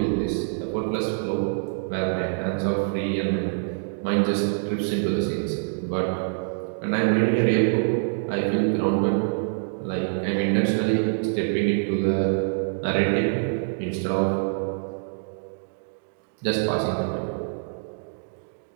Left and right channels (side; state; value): left; silent; digital silence